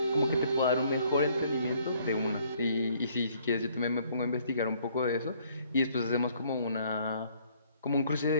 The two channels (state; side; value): inverted; both; correlation -0.64